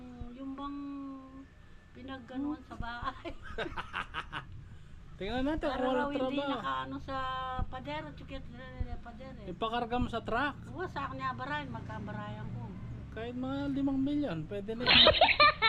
bang pinagganuan sa bahay. Tingnan natin kung Para raw walang hindi trabaho. nakaano sa padero, chukit padero. Ipakarga mo sa truck. Oo, sa akin niya barayan, magkabarayan ko. Kahit mga 5 milyon, pwede na yun.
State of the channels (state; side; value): identical; both; correlation 1.00